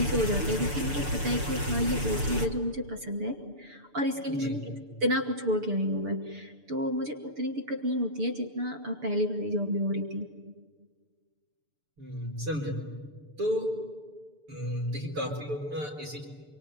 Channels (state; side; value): late; left; 6.8 ms